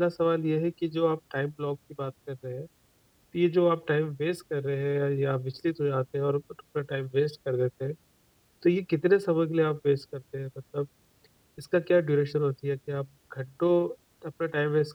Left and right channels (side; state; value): both; identical; correlation 1.00